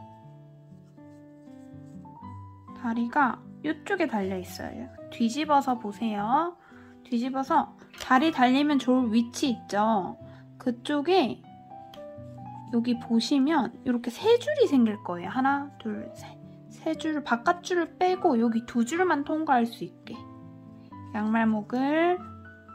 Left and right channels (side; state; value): both; identical; correlation 1.00